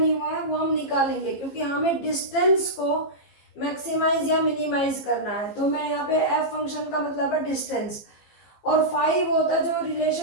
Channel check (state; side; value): late; right; 15 ms